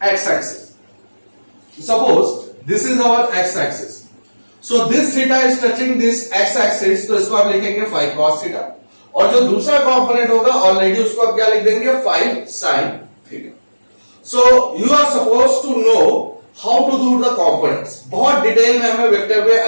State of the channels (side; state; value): both; inverted; correlation -1.00